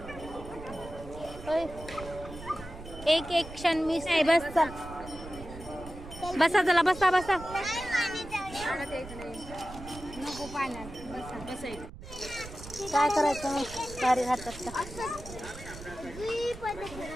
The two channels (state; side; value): noise; right; rumble, 14 dB below the sound